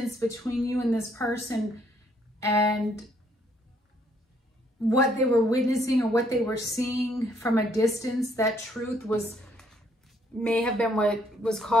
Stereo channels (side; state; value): both; normal; correlation 0.68